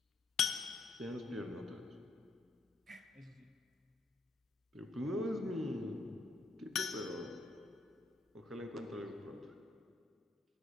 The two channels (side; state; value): right; quieter; 3.4 dB